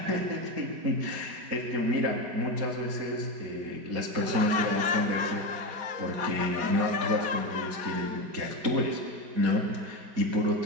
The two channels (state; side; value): late; left; 4.2 ms